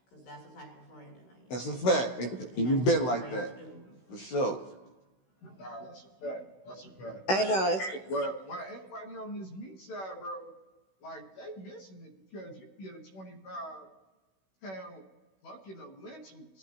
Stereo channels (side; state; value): right; late; 16 ms